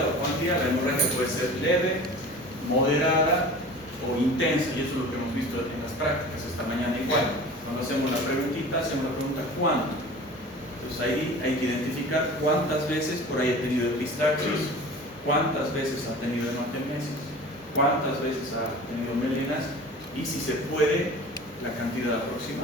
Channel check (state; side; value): normal; both; correlation 0.39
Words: o cuantía, la hemorragia puede ser leve, moderada o intensa, y eso es lo que hemos visto en las prácticas esta mañana igual. Cuando hacemos la preguntita, hacemos la pregunta ¿cuánto? Entonces ahí hay que identificar cuántas veces por ahí ha tenido epistaxis, cuántas veces ha tenido hematemesis, cuántas veces ha tenido melinas y si se puede, la cantidad